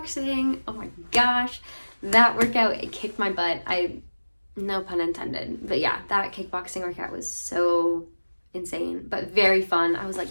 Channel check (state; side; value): inverted; both; correlation -1.00